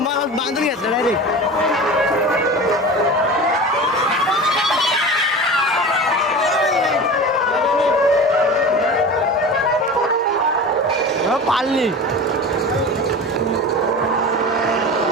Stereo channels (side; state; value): both; normal; correlation 0.32